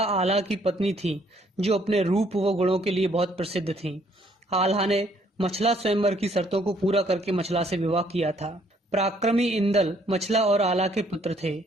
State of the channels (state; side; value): normal; both; correlation 0.65